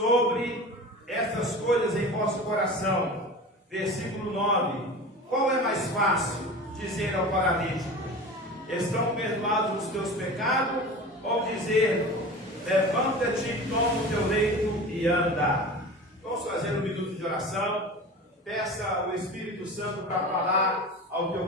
estas coisas em vosso coração? Versículo 9. Qual é mais fácil dizer ao paralítico: Estão perdoados os teus pecados? Ou dizer: Levanta-te, toma o teu leito e anda? Vamos fazer um minuto de oração. Peça o Espírito Santo para falar ao teu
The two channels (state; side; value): normal; both; correlation 0.34